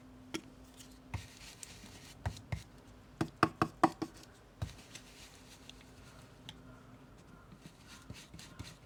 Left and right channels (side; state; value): both; identical; correlation 1.00